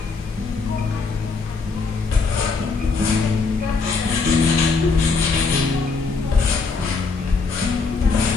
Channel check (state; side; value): quieter; right; 4.4 dB